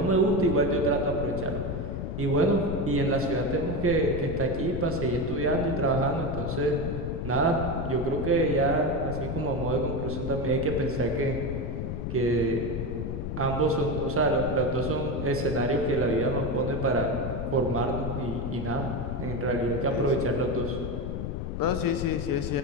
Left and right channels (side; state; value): left; noise; rumble, 4 dB below the sound